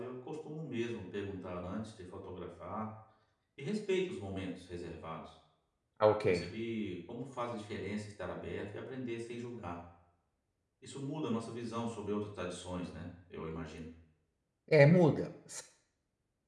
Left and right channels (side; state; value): both; identical; correlation 1.00